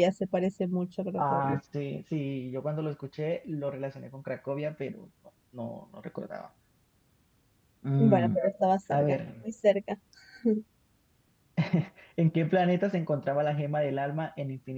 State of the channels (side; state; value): both; identical; correlation 1.00